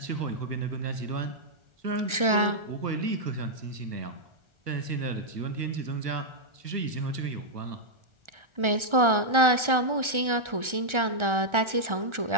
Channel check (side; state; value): left; late; 1.4 ms